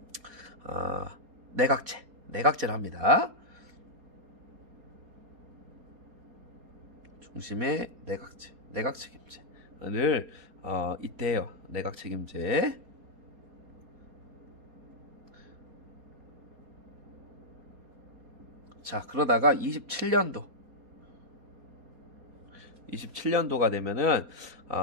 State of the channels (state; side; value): late; left; 4.2 ms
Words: 내각제를 합니다. 중심의 내각 책임제를 이때 해요. 내각 책임제. 자, 그러다가 27년도가 되면은